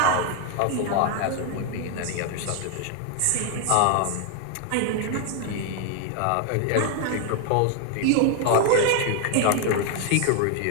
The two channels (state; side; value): different; both; correlation 0.00